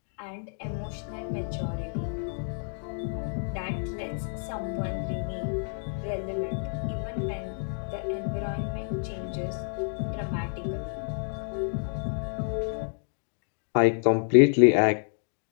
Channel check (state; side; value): silent; right; digital silence